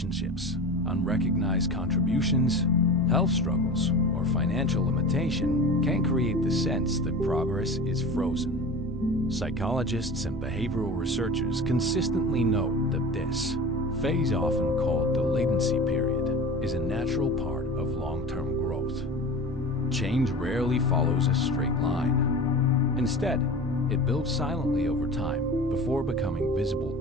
unrecognized contributions, health struggles, or financial limitation can create the sense that progress is frozen. Psychologists and behavioral researchers consistently note that this phase, often called the latency period, is a natural part of long-term growth. Change rarely follows a straight line. Instead, it builds silently over time before becoming visible.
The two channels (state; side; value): normal; both; correlation 0.34